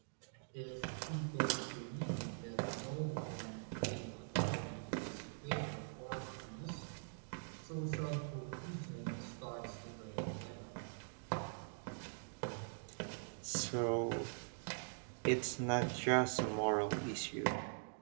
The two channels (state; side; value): silent; left; digital silence